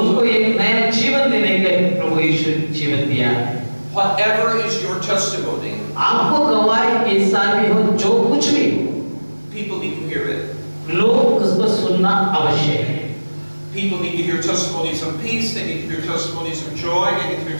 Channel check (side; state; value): both; inverted; correlation -1.00